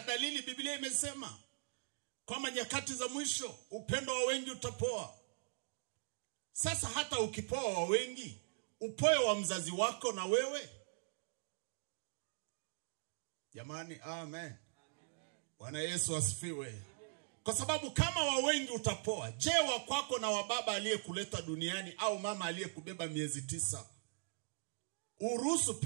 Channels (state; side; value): silent; left; digital silence